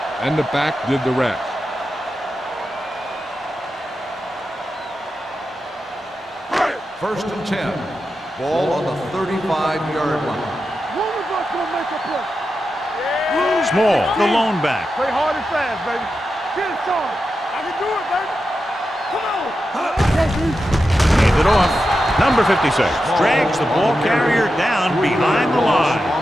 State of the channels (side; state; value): both; normal; correlation 0.90